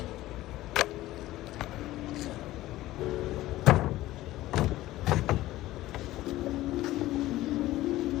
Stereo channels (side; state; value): right; quieter; 16.2 dB